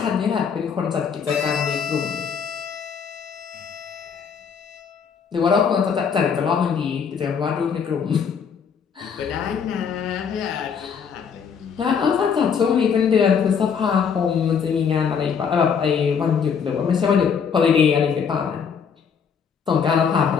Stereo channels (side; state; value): right; quieter; 6.7 dB